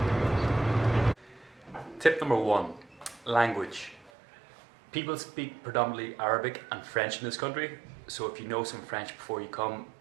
Tip number one, language. People speak predominantly Arabic and French in this country, so if you know some French before you come,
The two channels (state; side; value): drops out; left; at 4.1 s